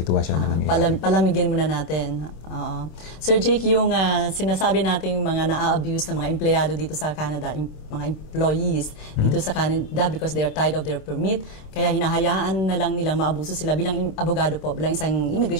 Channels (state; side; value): late; right; 26 ms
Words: na nangyayari. Palamigin muna natin. Sir Jake, yung sinasabi nating mga na-abuse na mga empleyado dito sa Canada, mga employees dito sa Canada because they are tired of their permit, kaya hinahayaan na lang nilang maabuso sila bilang abogado po, bilang isang